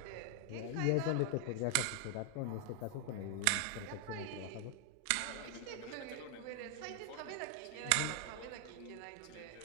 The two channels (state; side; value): different; both; correlation 0.00